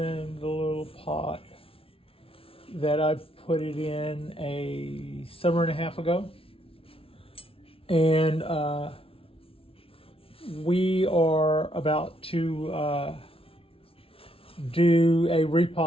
the little pot that I put it in a summer and a half ago. And we are about to do a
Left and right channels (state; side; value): late; right; 0.26 ms